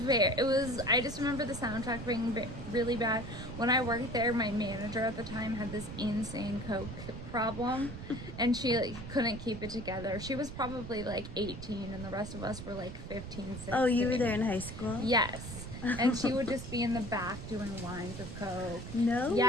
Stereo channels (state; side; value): noise; right; rumble, 10 dB below the sound